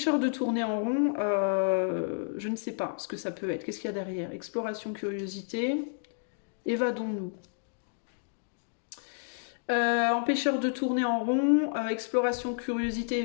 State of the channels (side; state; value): right; silent; digital silence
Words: de tourner en rond, je ne sais pas ce que ça peut être. Qu'est-ce qu'il y a derrière? Exploration, curiosité. Évadons-nous. Empêcheur de tourner en rond, exploration, curiosité,